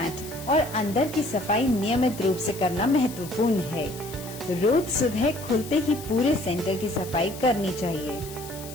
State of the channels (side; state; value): left; noise; hiss, 15 dB below the sound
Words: और अंदर की सफाई नियमित रूप से करना महत्वपूर्ण है। रोज सुबह खुलते ही पूरे सेंटर की सफाई करनी चाहिए।